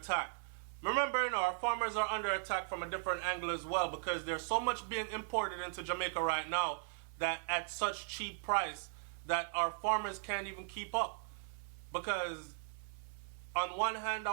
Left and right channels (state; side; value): silent; left; 52 dB below the other